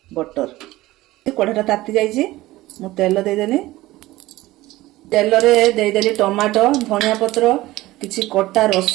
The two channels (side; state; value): left; quieter; 17.6 dB